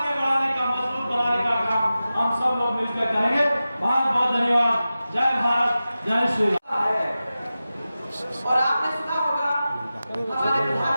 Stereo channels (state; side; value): inverted; both; correlation -0.94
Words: बढ़ाने का, मजबूत बनाने का काम हम सब लोग मिलकर करेंगे। बहुत बहुत धन्यवाद। जय भारत, जय श्री राम। और आपने सुना होगा हमारे